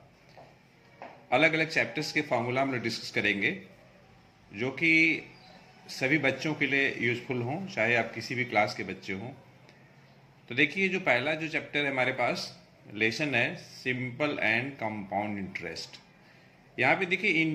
अलग अलग चैप्टर्स के फार्मूला हम लोग डिस्कस करेंगे जो कि सभी बच्चों के लिए यूज़फुल हों, चाहे आप किसी भी क्लास के बच्चे हों। तो देखिए, जो पहला जो चैप्टर है हमारे पास लेसन है सिंपल एंड कंपाउंड इंटरेस्ट। यहाँ पे देखिए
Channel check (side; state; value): both; identical; correlation 1.00